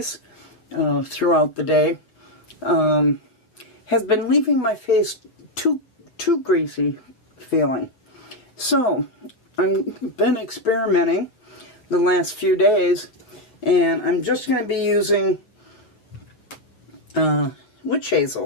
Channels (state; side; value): late; right; 7.6 ms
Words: throughout the day has been leaving my face too greasy feeling. So I've been experimenting the last few days, and I'm just going to be using witch